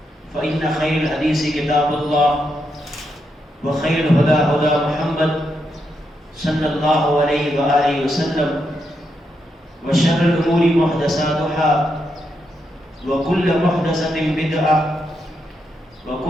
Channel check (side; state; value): both; normal; correlation 0.82